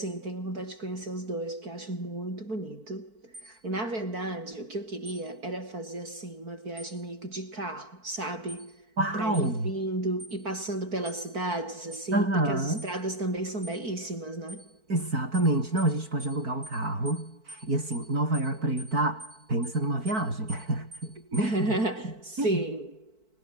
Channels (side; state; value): left; late; 4.5 ms